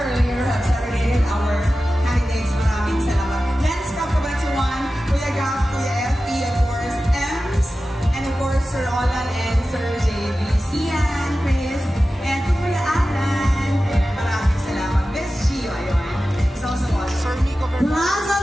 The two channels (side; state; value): both; normal; correlation 0.94